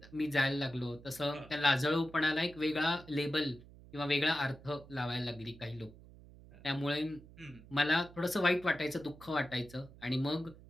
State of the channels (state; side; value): noise; right; hum, 20 dB below the sound